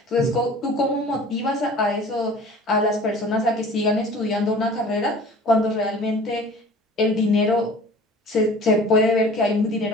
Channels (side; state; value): both; normal; correlation 0.45